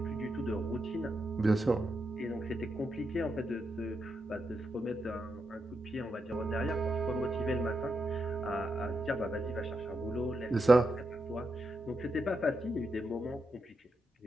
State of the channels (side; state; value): both; normal; correlation 0.84